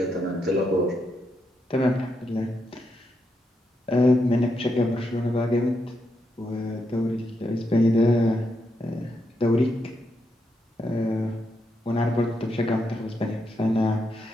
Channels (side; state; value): both; normal; correlation 0.82